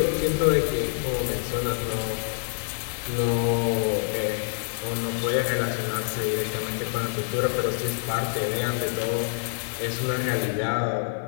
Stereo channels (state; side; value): silent; right; 61 dB below the other